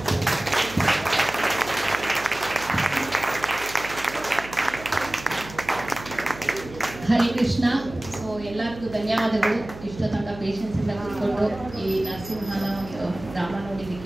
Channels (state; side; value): noise; right; hum, 14 dB below the sound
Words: ಹರೇ ಕೃಷ್ಣ. ಸೊ ಎಲ್ಲರಿಗೂ ಧನ್ಯವಾದಗಳು. ಇಷ್ಟು ತನಕ ಪೇಷನ್ಸಿಂದ ಕೂತ್ಕೊಂಡು ಈ ನರಸಿಂಹನ ಒಂದು ಡ್ರಾಮ